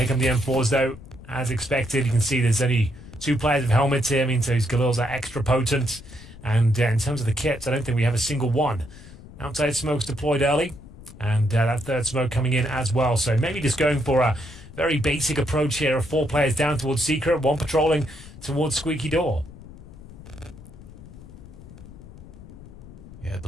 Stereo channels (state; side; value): noise; left; rumble, 17 dB below the sound